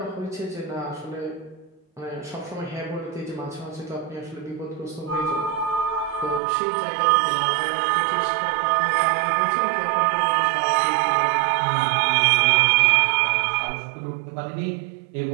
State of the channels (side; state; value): left; drops out; at 6.4 s